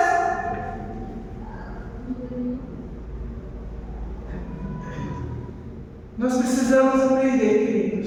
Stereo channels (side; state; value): both; identical; correlation 1.00